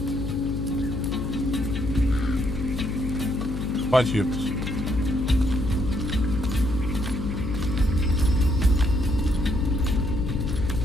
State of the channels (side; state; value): left; noise; hum, 5 dB below the sound